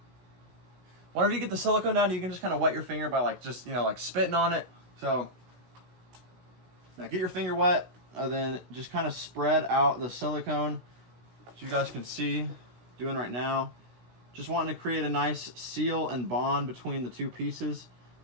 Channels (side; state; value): left; late; 16 ms